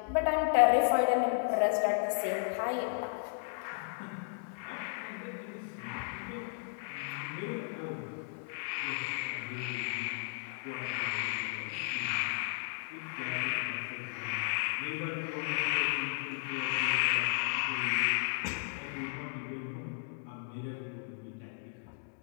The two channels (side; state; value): right; silent; digital silence